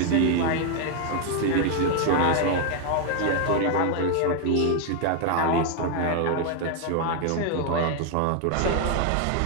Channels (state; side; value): different; both; correlation 0.00